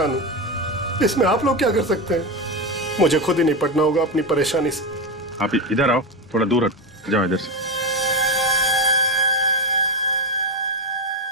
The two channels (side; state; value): both; normal; correlation 0.15